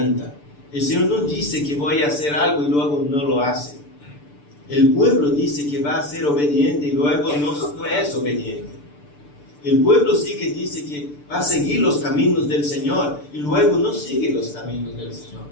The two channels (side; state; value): right; late; 6.8 ms